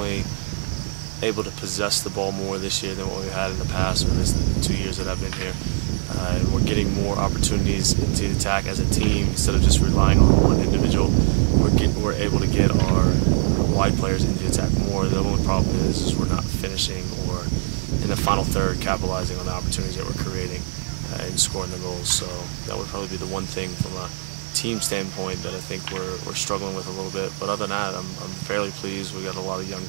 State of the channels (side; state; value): left; silent; 57 dB below the other